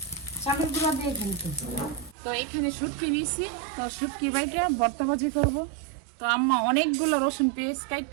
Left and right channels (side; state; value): left; drops out; at 2.1 s